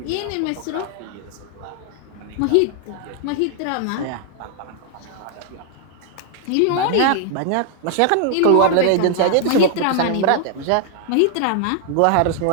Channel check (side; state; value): both; different; correlation 0.00